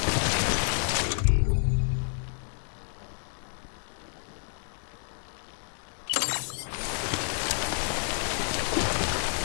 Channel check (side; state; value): right; silent; 56 dB below the other